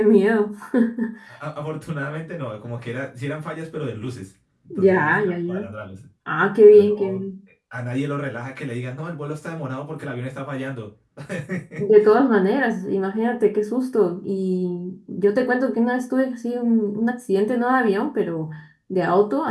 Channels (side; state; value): both; identical; correlation 1.00